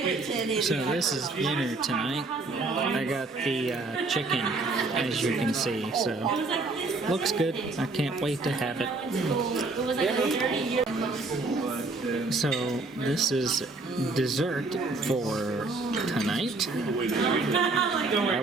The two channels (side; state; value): left; quieter; 3.4 dB